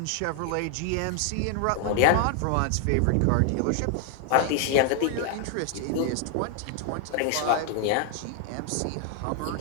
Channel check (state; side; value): different; both; correlation 0.00